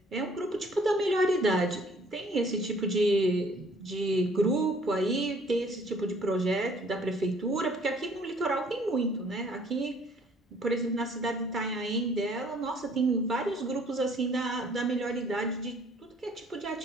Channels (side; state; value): both; normal; correlation 0.58